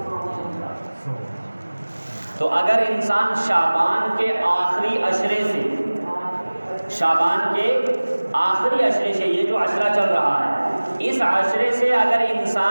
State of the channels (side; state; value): both; inverted; correlation -1.00